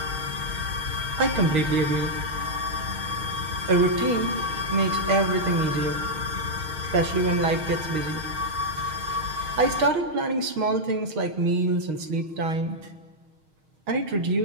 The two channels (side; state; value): left; late; 6.4 ms